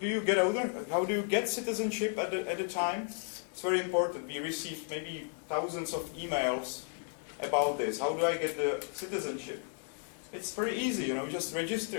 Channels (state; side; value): silent; right; 55 dB below the other